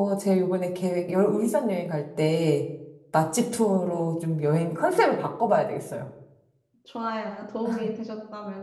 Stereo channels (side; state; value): both; identical; correlation 1.00